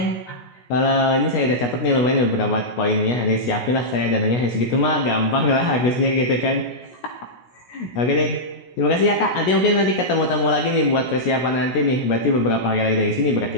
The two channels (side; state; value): right; late; 16 ms